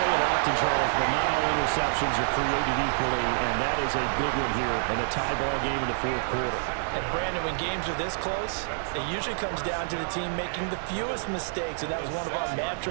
it often, Charles, but not all interceptions are created equally, and that is a big one here in a tie ball game in the fourth quarter. And Brandon, when games are this close, it usually comes down to the team making the fewest mistakes, and that was one of our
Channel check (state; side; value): silent; left; 60 dB below the other